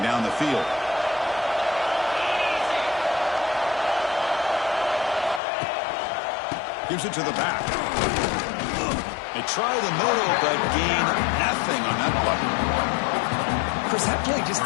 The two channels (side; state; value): right; drops out; at 5.4 s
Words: the field. Gives it to the back. They try the middle, but gain nothing on that play. Chris, that play just